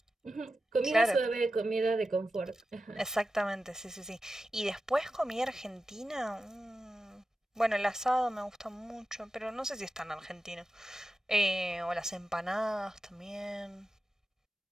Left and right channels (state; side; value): normal; both; correlation 0.92